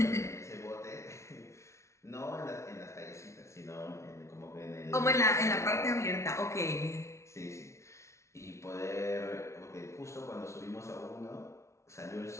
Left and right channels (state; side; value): late; right; 0.13 ms